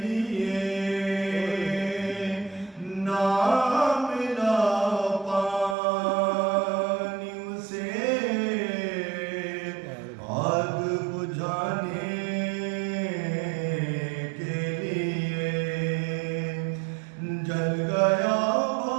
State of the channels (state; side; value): drops out; left; at 5.8 s